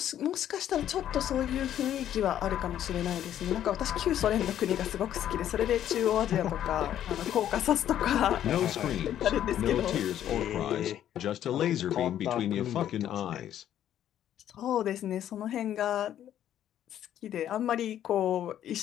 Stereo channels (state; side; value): quieter; right; 11.1 dB